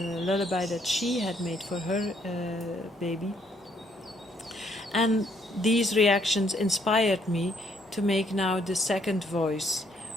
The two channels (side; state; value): both; normal; correlation 0.69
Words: that she had made for her baby. And these reactions inspired me to make now the second voice